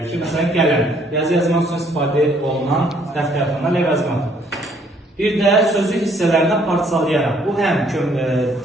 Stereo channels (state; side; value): normal; both; correlation 0.64